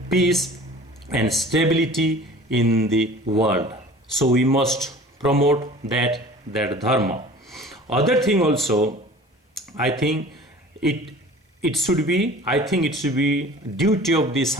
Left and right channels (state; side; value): normal; both; correlation 0.44